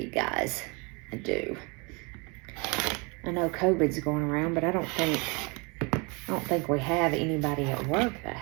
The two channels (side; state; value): left; quieter; 30.4 dB